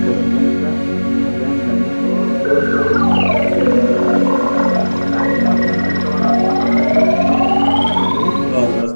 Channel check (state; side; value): inverted; both; correlation -1.00